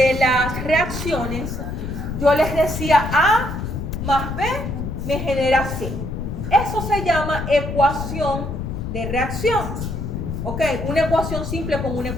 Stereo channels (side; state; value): left; noise; rumble, 5 dB below the sound